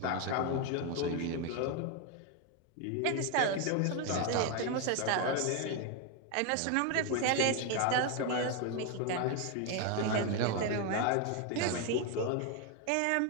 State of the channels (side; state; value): both; different; correlation 0.01